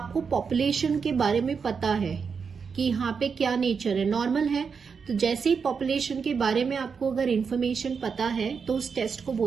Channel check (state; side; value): quieter; left; 5.8 dB